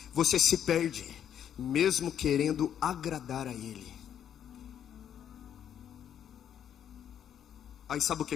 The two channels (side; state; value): right; quieter; 9.5 dB